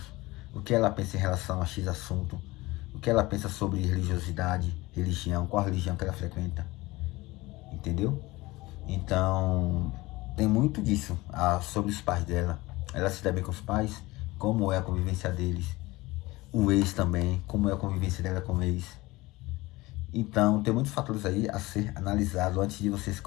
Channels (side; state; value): right; quieter; 20.6 dB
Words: o que ela pensa em relação a X assunto, o que ela pensa sobre religiosidade, religião, qual religião que ela frequenta, entendeu? Então, tem muito disso sobre os pais dela, ela se dá bem com os pais, como é a convivência deles, o ex também, como é a convivência dela com o ex. Então, tem muitos fatores aí a ser analisado antes de você